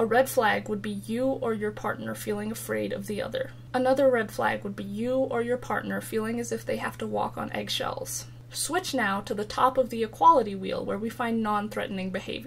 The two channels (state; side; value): identical; both; correlation 1.00